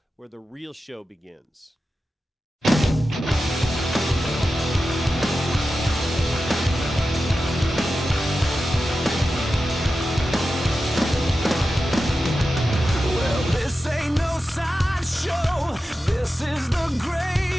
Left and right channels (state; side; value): normal; both; correlation 0.92